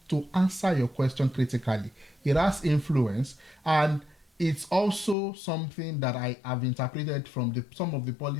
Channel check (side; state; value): right; drops out; at 5.2 s